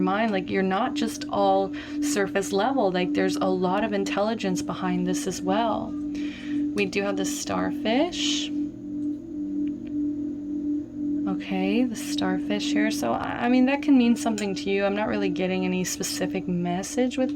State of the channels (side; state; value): both; identical; correlation 1.00